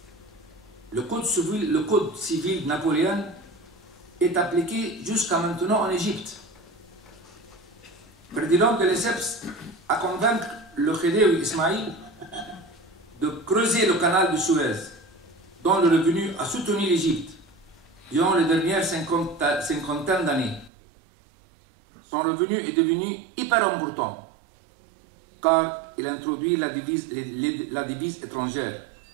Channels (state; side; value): drops out; left; at 20.7 s